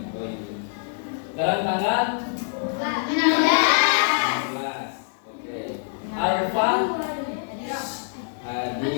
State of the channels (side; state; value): right; silent; digital silence